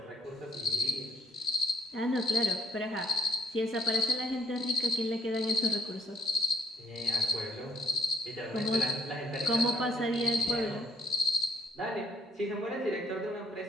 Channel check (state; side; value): normal; both; correlation 0.66